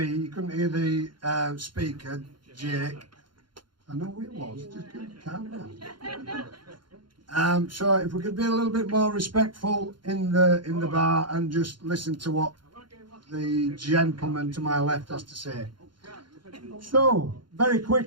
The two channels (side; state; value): left; late; 0.72 ms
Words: You couldn't hear the speaker, Jake. I know who it was. Just calm down. So if we could be a little bit more respectful in the bar and just listen to what the gentleman to my left has to say. So, very